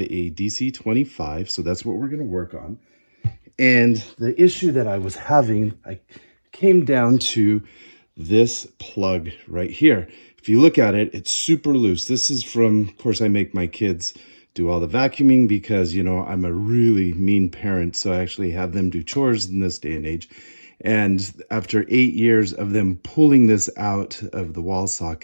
a DC25, so that's what we're going to work on. And the issue that I was having, I came down to this plug right here. If you look at it, it's super loose. This is from, of course, I make my kids do all the vacuuming because, you know, I'm a really mean parent, so I actually have them do chores in this day and age. And after 8 years of them pulling this out of the wall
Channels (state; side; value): inverted; both; correlation -1.00